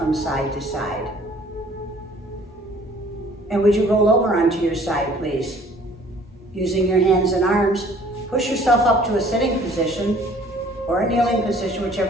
side to side. And would you roll over onto your side, please? Using your hands and arms, push yourself up to a sitting position or a kneeling position,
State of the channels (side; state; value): both; normal; correlation 0.55